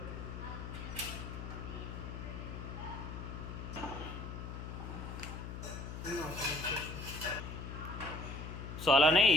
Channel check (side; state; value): left; noise; hum, 7 dB below the sound